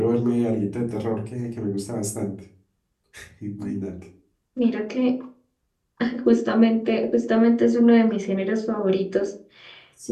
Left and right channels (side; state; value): both; identical; correlation 1.00